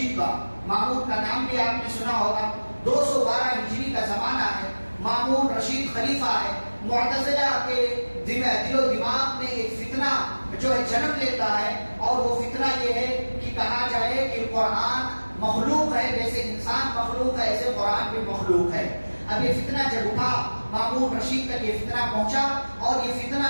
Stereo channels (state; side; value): inverted; both; correlation -1.00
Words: کا، مامون کا نام بھی آپ نے سنا ہوگا۔ 212 ہجری کا زمانہ ہے، مامون رشید خلیفہ ہے۔ معتزلہ کے دل و دماغ میں ایک فتنہ جو ہے جنم لیتا ہے، اور وہ فتنہ یہ ہے کہ کہا جائے کہ قرآن مخلوق ہے، جیسے انسان مخلوق ہے ایسے قرآن بھی مخلوق ہے۔ اب یہ فتنہ جب اٹھا، مامون رشید تک یہ فتنہ پہنچا، اور یہ فتنہ